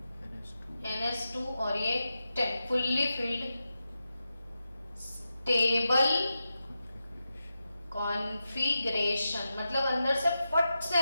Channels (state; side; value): inverted; both; correlation -0.90